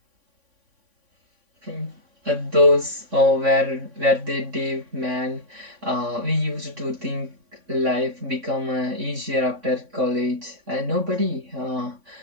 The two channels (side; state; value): left; late; 3.5 ms